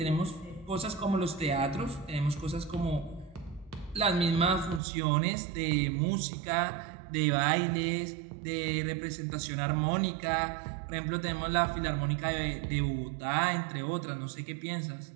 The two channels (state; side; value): drops out; left; at 4.8 s